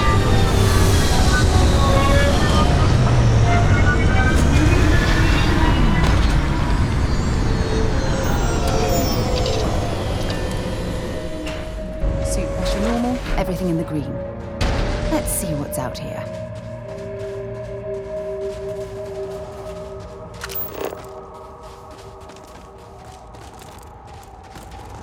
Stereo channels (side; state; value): both; identical; correlation 1.00